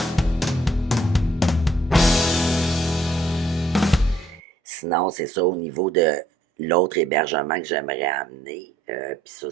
Sinon, c'est ça au niveau de l'autre hébergement que j'aimerais amener. Puis ça,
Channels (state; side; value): normal; both; correlation 0.66